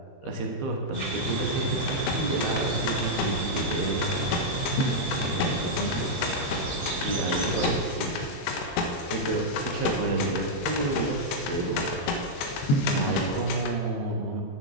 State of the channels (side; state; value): right; late; 22 ms